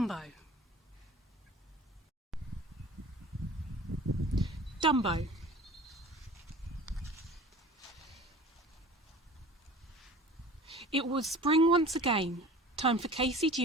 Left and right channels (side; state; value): both; normal; correlation 0.42